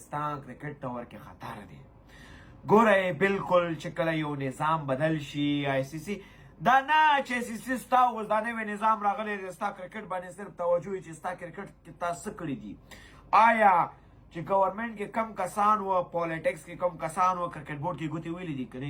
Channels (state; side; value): identical; both; correlation 1.00